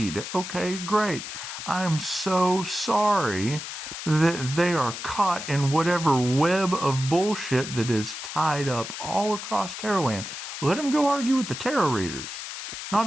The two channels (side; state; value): left; noise; hiss, 8 dB below the sound